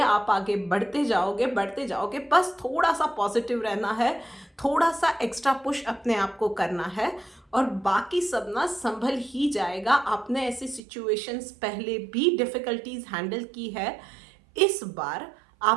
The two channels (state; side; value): drops out; left; at 10.8 s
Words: आगे बढ़ते जाओगे। बस थोड़ा सा पॉजिटिव रहना है, थोड़ा सा एक्स्ट्रा पुश अपने आप को करना है, और बाकी सब ना संभल ही जाएगा। आपने ऐसी सिचुएशंस पहले भी डिफ़िकल्टीज हैंडल की है, इस बार